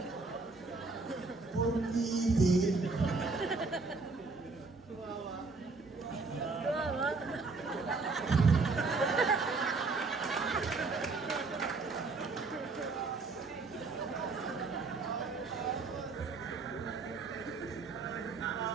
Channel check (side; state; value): left; quieter; 4.0 dB